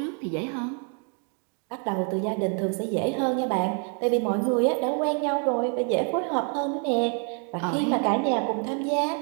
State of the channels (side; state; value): left; quieter; 38.8 dB